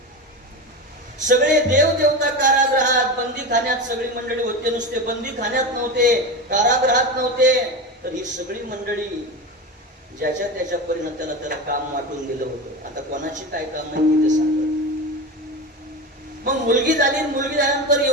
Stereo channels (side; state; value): both; normal; correlation 0.23